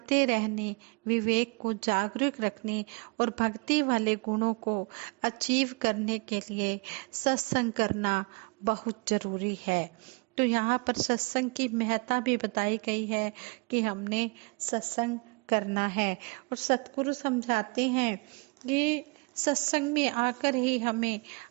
रहने, विवेक को जागरूक रखने और भक्ति वाले गुणों को अचीव करने के लिए सत्संग करना बहुत जरूरी है। तो यहाँ पर सत्संग की महत्ता भी बताई गई है कि हमने सत्संग करना है। और सतगुरु समझाते हैं कि सत्संग में आकर ही हमें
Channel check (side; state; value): left; quieter; 29.8 dB